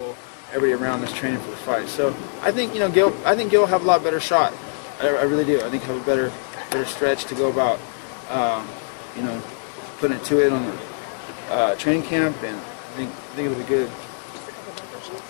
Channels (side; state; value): right; silent; 63 dB below the other